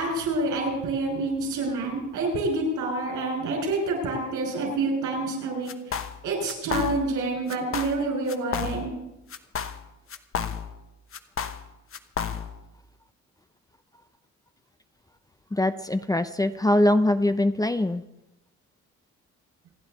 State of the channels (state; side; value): normal; both; correlation 0.47